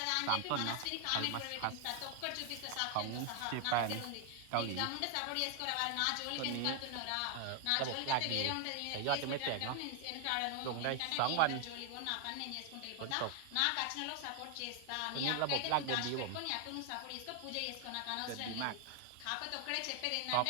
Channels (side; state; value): both; different; correlation 0.00